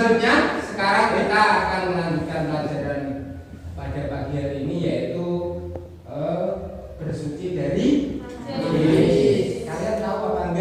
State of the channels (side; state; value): both; identical; correlation 1.00